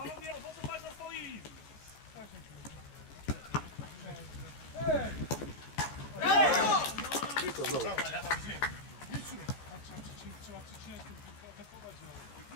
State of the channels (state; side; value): late; right; 14 ms